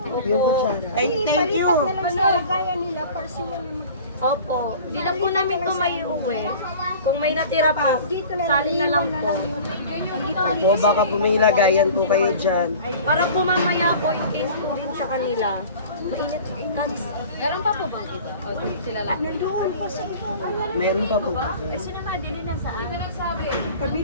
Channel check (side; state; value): both; inverted; correlation -0.41